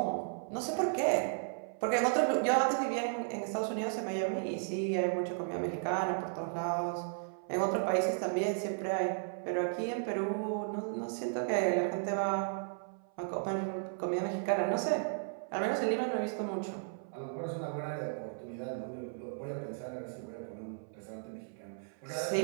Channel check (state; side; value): silent; left; 55 dB below the other